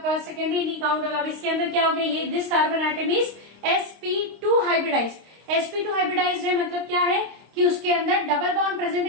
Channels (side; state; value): left; late; 26 ms